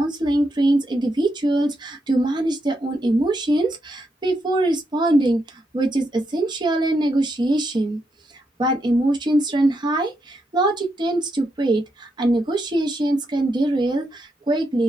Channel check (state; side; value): normal; both; correlation 0.82